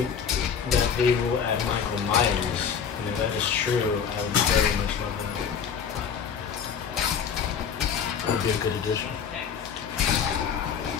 that they will add Michael Myers, and if that is true, I would very much love that. That would be a good addition.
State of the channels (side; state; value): right; quieter; 7.1 dB